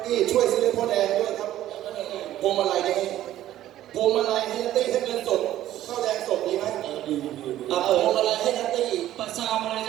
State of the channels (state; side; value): quieter; left; 13.2 dB